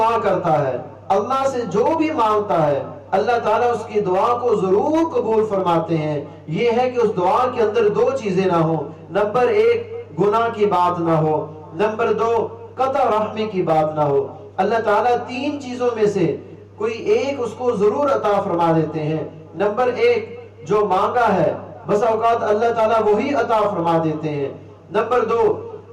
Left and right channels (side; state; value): both; identical; correlation 1.00